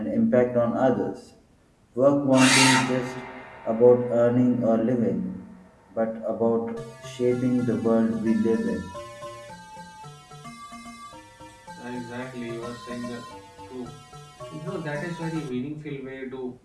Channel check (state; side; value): identical; both; correlation 1.00